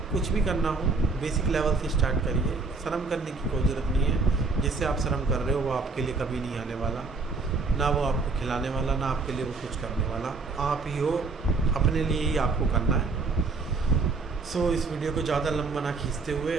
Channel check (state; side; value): quieter; left; 4.1 dB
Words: कुछ भी करना हो बेसिक लेवल से स्टार्ट करिए। शर्म करने की कोई ज़रूरत नहीं है। जिससे आप शर्म कर रहे हो वो आपके लिए कभी नहीं आने वाला, ना वो आपको खिलाने वाला, ना आपके लिए वो कुछ करने वाला। आप ही हो, अपने लिए ही आपको करना है। सो इस वीडियो को ज़्यादा लंबा ना खींचते हुए